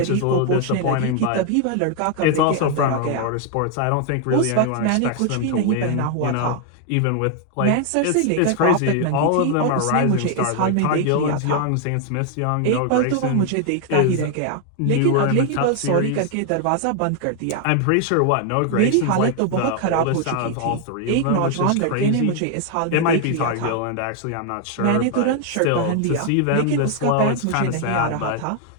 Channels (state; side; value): different; both; correlation 0.00